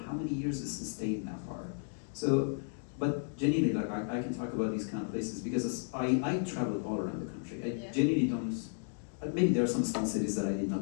how many years it's sustained that far. So, but genuinely, like I can talk about these kind of places because I traveled all around the country. I genuinely don't, maybe there are some small cities that I did not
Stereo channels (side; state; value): right; silent; digital silence